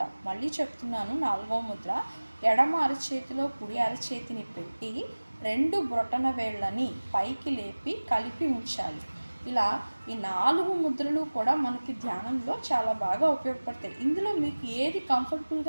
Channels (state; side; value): inverted; both; correlation -1.00